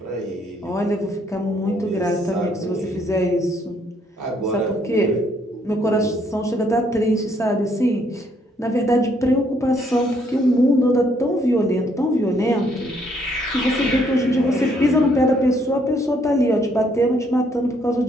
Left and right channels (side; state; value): both; normal; correlation 0.69